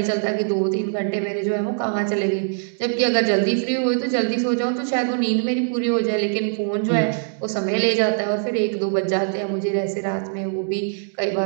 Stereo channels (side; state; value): left; silent; digital silence